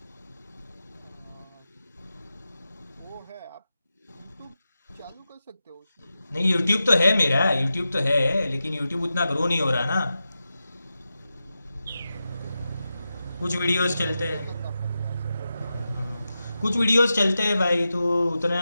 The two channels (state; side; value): inverted; both; correlation -0.91